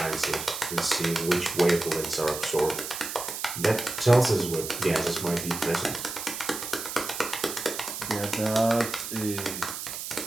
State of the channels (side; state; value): right; noise; hiss, 7 dB below the sound